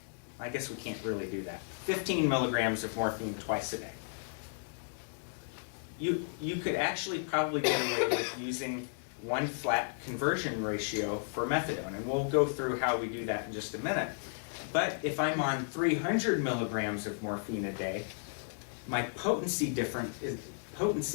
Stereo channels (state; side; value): silent; right; 55 dB below the other